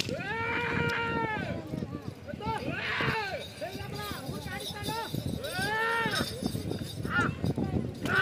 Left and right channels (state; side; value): identical; both; correlation 1.00